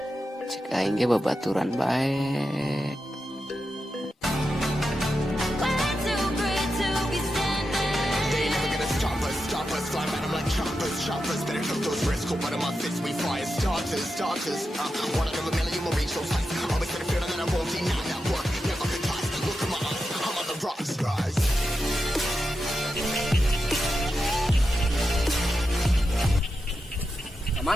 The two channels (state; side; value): normal; both; correlation 0.88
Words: Cek aing ge babaturan bae.